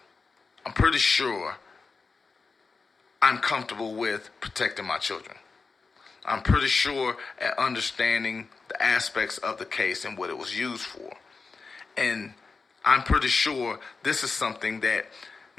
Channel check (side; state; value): right; quieter; 4.5 dB